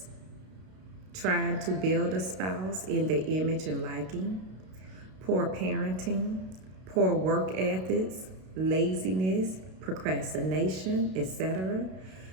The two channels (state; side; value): late; left; 32 ms